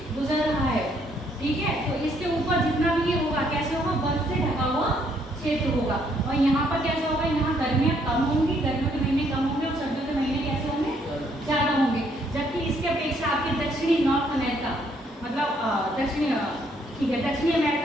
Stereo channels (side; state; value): both; normal; correlation 0.69